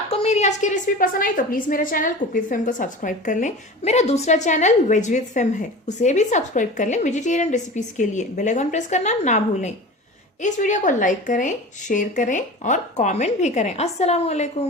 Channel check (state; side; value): normal; both; correlation 0.34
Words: मेरी आज की रेसिपी पसंद आई तो प्लीज मेरे चैनल कुक विद फेम को सब्सक्राइब कर लें। मेरा दूसरा चैनल वेज विद फेम है, उसे भी सब्सक्राइब कर लें वेजिटेरियन रेसिपीज के लिए। बेल आइकन प्रेस करना ना भूलें। इस वीडियो को लाइक करें, शेयर करें और कमेंट भी करें। अस्सलाम